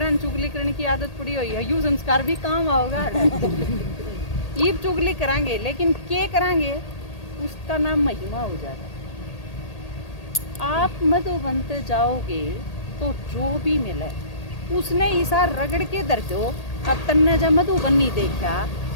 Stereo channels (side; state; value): right; late; 1.8 ms